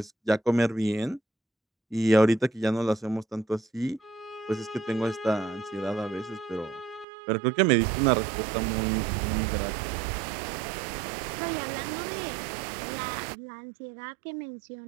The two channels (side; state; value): left; drops out; at 7.1 s